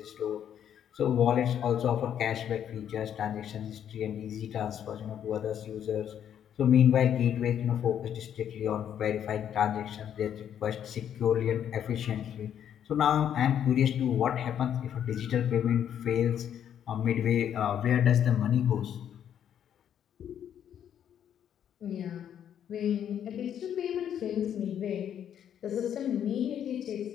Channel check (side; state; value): right; quieter; 9.5 dB